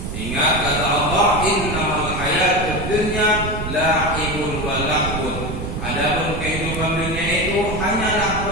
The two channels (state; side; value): noise; right; rumble, 5 dB below the sound